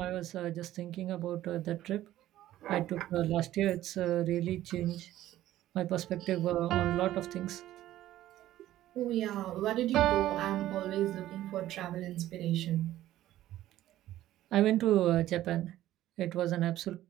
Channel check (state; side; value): quieter; left; 14.0 dB